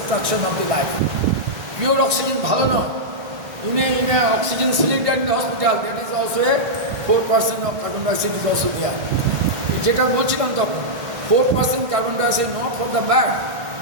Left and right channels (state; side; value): late; left; 1.6 ms